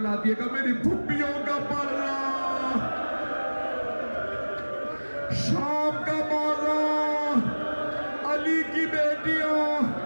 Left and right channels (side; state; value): both; inverted; correlation -1.00